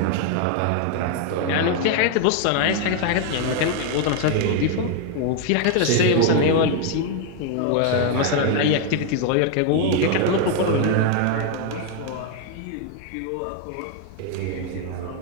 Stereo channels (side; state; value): both; different; correlation 0.00